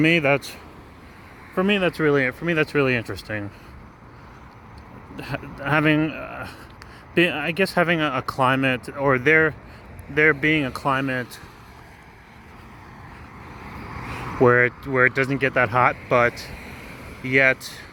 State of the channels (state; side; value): identical; both; correlation 1.00